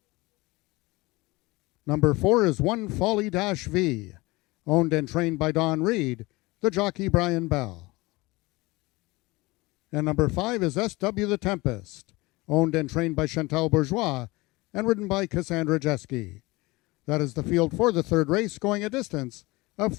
Number 4 is One Folly Dash V, owned and trained by Don Reed, the jockey Brian Bell. And number 5 is SW the Tempest, owned and trained by Chantal Bourgeois, and ridden by Cassandra Jeske. That is the field for the third race, going a distance of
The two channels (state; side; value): quieter; right; 22.5 dB